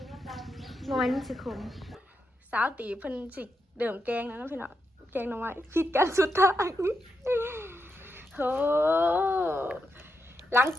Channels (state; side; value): normal; both; correlation 0.85